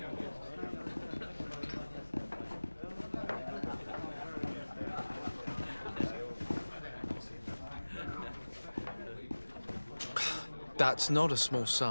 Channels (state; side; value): inverted; both; correlation -1.00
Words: That's not a small